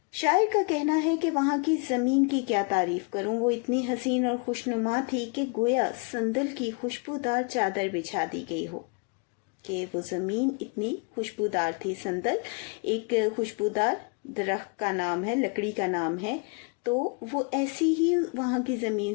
शायर का कहना है कि वहाँ की ज़मीन की क्या तारीफ करूँ, वो इतनी हसीन और खुशनुमा थी कि गोया संदल की खुशबूदार चादर बिछा दी गई हो, कि वो ज़मीन इतनी खुशबूदार थी। संदल एक खुशबूदार दरख्त का नाम है, लकड़ी का नाम है, तो वो ऐसी ही वहाँ की ज़मीन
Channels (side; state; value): right; quieter; 33.5 dB